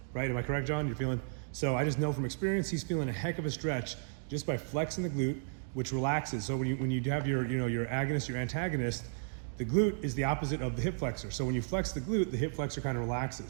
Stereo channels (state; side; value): silent; left; digital silence